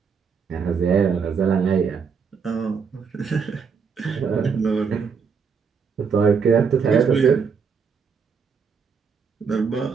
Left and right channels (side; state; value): left; quieter; 6.0 dB